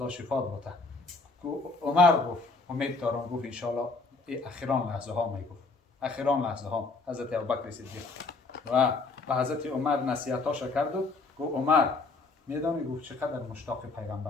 شفات بده. عمر گفت امید دارم. گفت ان شاء الله اخیران لحظه ها میگفت. اخیران لحظه ها حضرت ابوبکر صدیق و به حضرت عمر نصیحتاش کرد و گفت عمر میدانی گفت چقدر مشتاق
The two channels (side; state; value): right; quieter; 3.9 dB